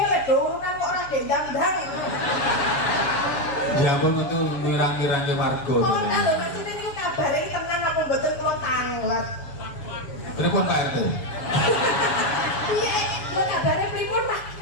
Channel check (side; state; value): right; late; 7.1 ms